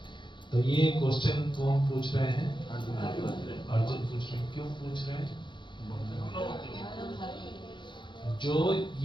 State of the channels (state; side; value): late; right; 0.23 ms